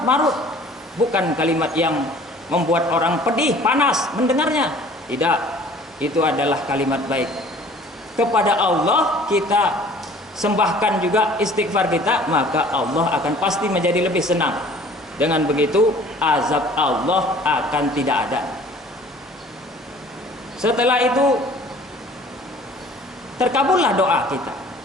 bukan kalimat yang membuat orang pedih, panas mendengarnya. Tidak, itu adalah kalimat baik. Kepada Allah kita sembahkan juga istighfar kita, maka Allah akan pasti menjadi lebih senang. Dengan begitu azab Allah akan tidak ada. Setelah itu terkabullah doa kita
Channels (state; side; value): normal; both; correlation 0.50